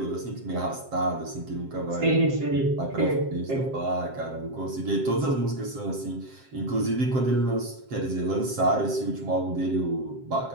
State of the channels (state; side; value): late; left; 7.6 ms